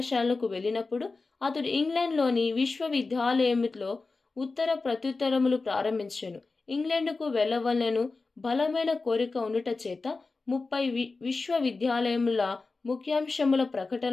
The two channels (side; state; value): right; quieter; 3.8 dB